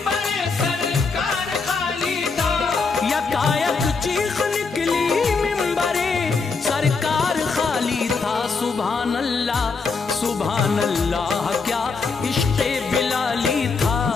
सरकार खाली था, यकायक चीख निकली मिंबरे सरकार खाली था। सुभान अल्लाह क्या इश्क़े बिलाली था,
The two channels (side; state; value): right; quieter; 4.6 dB